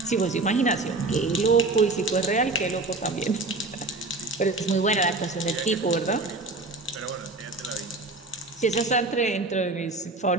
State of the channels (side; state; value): left; quieter; 3.2 dB